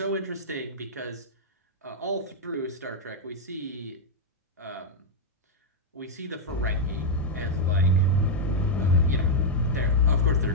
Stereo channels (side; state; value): both; normal; correlation -0.03